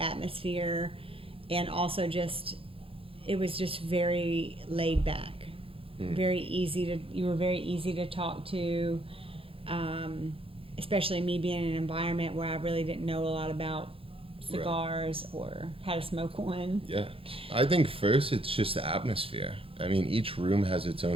and also it was just very laid back, very easy you were very easy to talk to, especially me being in an environment where I really didn't know a lot about cigars or how to smoke one. Yeah. I think first it's just the atmosphere. I mean, each room has its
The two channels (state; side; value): late; left; 0.27 ms